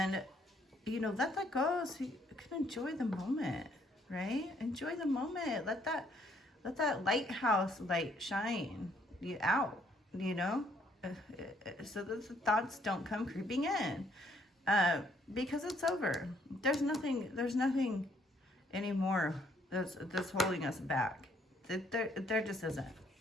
you know, let that go so you can enjoy the moment, right? Enjoy the moment. Let that lighthouse light shine you out, you know, so that the thoughts don't come creeping in, because it's over. There's nothing anymore that's holding us back. There just isn't.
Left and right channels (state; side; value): normal; both; correlation 0.67